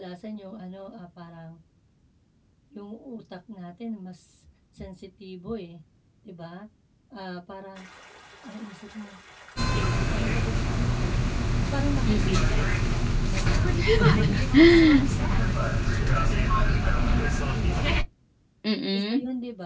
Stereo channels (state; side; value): identical; both; correlation 1.00